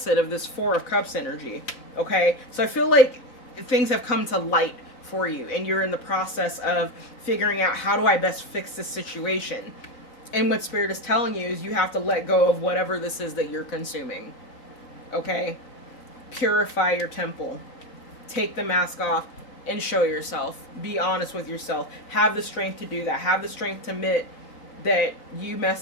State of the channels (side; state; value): right; late; 4.0 ms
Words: of this Four of Cups energy. Okay, so I feel like things have come to light for you, and you're in the process of figuring out, how do I best fix this situation? And what Spirit is telling you is you have to let go of whatever this is that you're consuming. Okay? Purify your temple. Take the mask off and show yourself. Be honest with yourself. Have the strength to do that. Have the strength to admit that you